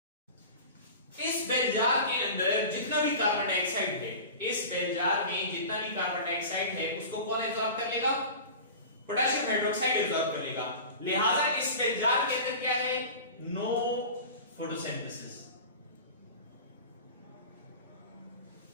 इस बेलजार के अंदर जितना भी कार्बन डाइऑक्साइड है, इस बेलजार में जितना भी कार्बन डाइऑक्साइड है उसको कौन एब्जॉर्ब कर लेगा? पोटेशियम हाइड्रोक्साइड एब्जॉर्ब कर लेगा। लिहाजा इस बेलजार के अंदर क्या है? No photosynthesis.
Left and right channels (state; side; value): inverted; both; correlation -0.34